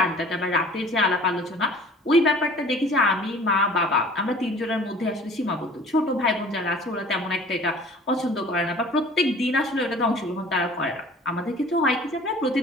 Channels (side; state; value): both; normal; correlation 0.48